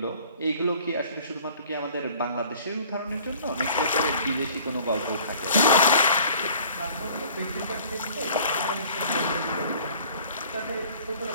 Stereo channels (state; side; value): inverted; both; correlation -0.50